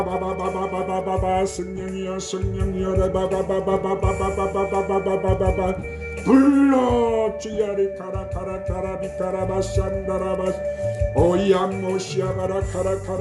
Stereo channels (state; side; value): identical; both; correlation 1.00